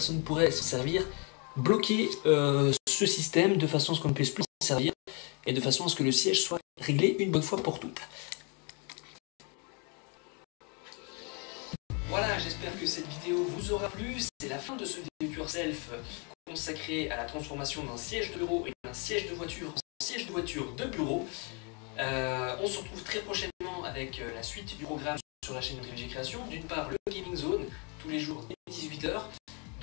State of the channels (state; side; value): quieter; right; 34.3 dB